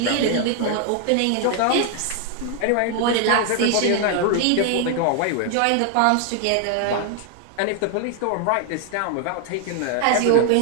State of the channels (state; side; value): different; both; correlation 0.00